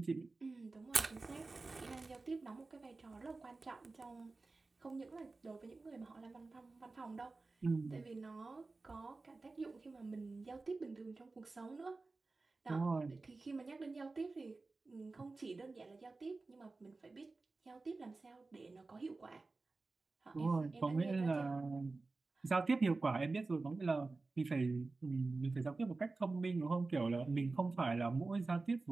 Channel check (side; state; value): left; quieter; 3.6 dB